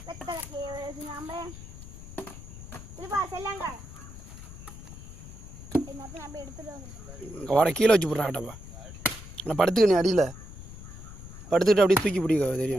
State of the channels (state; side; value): noise; left; rumble, 14 dB below the sound